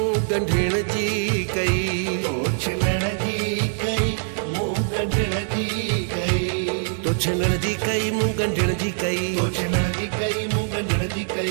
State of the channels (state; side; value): silent; left; digital silence